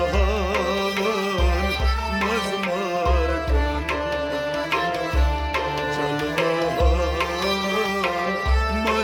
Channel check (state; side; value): identical; both; correlation 1.00